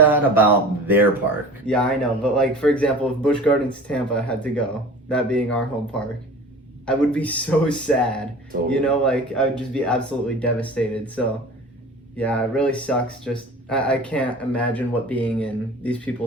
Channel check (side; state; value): both; normal; correlation 0.40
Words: about their park. Yeah, I know. But for example, if Busch Gardens Tampa had to go, that being our home park, I would be so sad. Totally. I would just be absolutely devastated. So, yeah, it really sucks. Just, I can't imagine what being in these